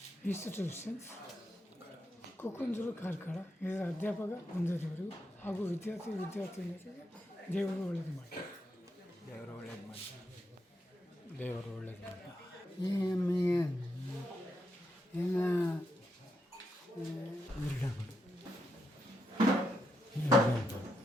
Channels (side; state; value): both; normal; correlation 0.82